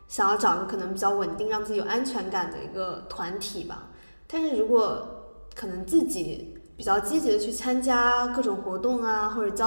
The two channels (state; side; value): inverted; both; correlation -1.00